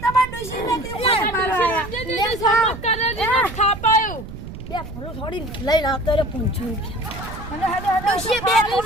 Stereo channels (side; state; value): right; noise; rumble, 11 dB below the sound